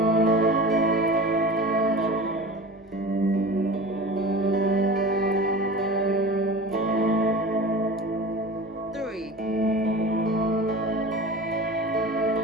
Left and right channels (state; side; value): normal; both; correlation 0.34